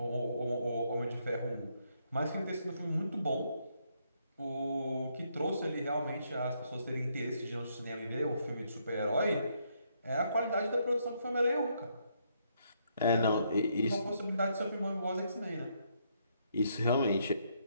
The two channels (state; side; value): inverted; both; correlation -0.74